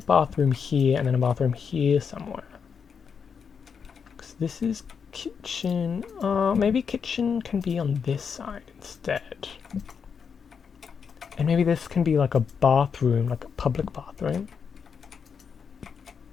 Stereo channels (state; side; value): quieter; right; 6.4 dB